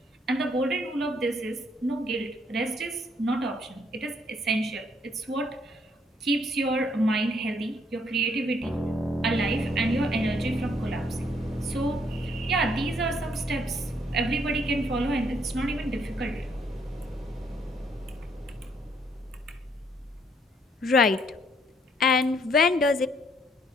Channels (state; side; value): normal; both; correlation 0.68